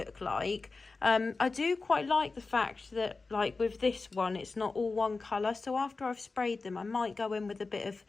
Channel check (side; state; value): right; quieter; 3.9 dB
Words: like. I do quite like the fact that like with this one, it's not all one colour. So after I've sprayed them, I might go in with a bit of